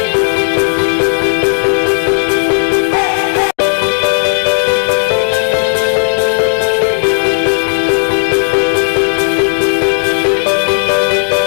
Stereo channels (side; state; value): right; silent; digital silence